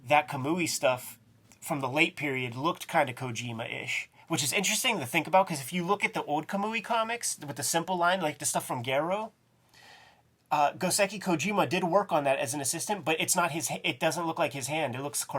that Kamui stuff from the late period looked kind of Kojima-ish. which is interesting to think about because if you look at the old Kamui comics with the simple line, like the stuff from Garo, Goseki Kojima did work on that as an assistant, but it's not his. It doesn't look like his hand. It looks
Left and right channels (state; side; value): identical; both; correlation 1.00